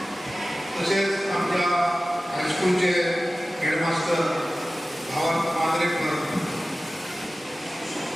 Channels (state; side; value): normal; both; correlation 0.96